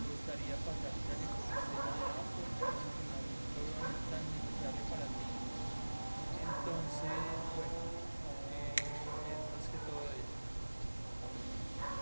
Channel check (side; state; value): both; inverted; correlation -1.00